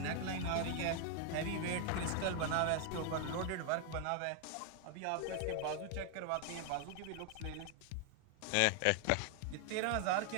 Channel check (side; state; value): both; different; correlation 0.00